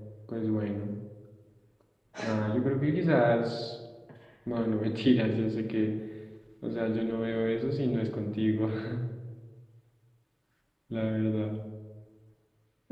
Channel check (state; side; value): identical; both; correlation 1.00